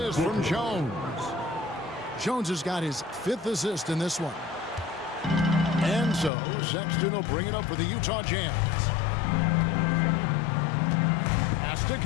from Jones. Jones has got his 5th assist in this one. And so Sexton will bring it up for the Utah Jazz. Pass to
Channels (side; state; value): right; drops out; at 6.3 s